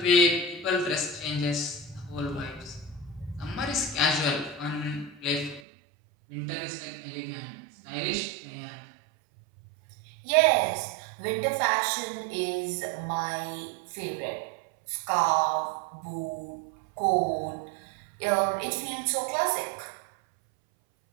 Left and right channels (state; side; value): drops out; left; at 5.6 s